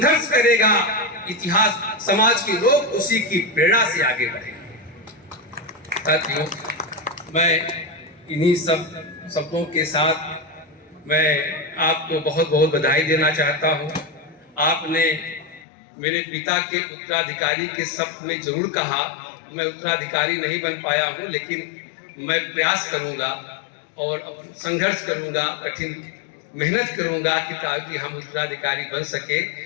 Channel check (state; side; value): drops out; right; at 15.7 s